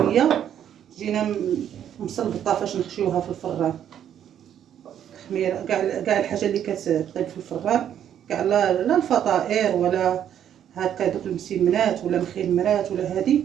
تجينا مصلبطه فاش نخشيوها في الفران. خميره كاع الحاجه اللي كتطيب في الفران، كاع لا الفطائر ولا هكا دوك المسمنات ولا مخمرات ولا هذه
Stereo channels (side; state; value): left; quieter; 9.9 dB